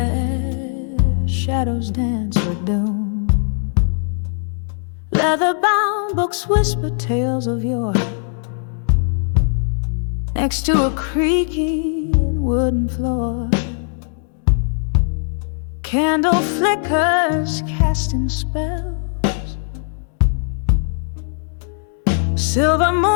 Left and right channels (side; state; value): right; silent; 59 dB below the other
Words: shadows dance with doom, leather-bound books whisper tales of yore. Next to a creaking wooden floor, candle flickers casting spells. Silver